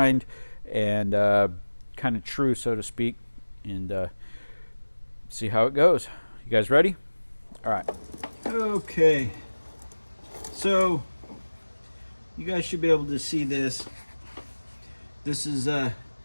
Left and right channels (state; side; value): inverted; both; correlation -1.00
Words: and kind of true, so to speak, and see how it goes. You guys ready? All right. Okay. So you guys should be able to see this. This is the